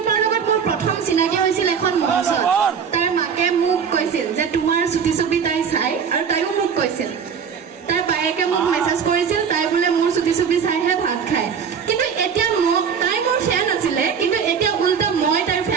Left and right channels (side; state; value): left; quieter; 6.8 dB